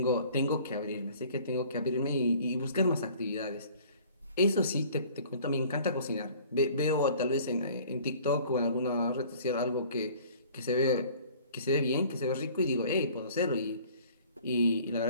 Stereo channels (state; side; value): inverted; both; correlation -0.51